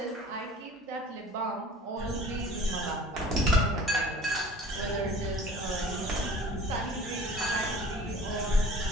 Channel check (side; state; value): both; normal; correlation 0.46